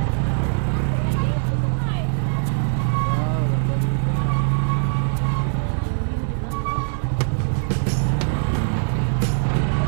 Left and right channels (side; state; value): left; silent; 60 dB below the other